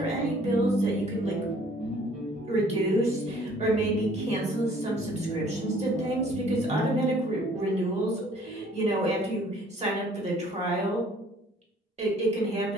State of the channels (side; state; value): both; normal; correlation 0.57